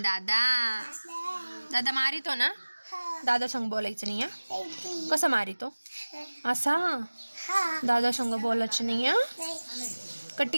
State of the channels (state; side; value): inverted; both; correlation -1.00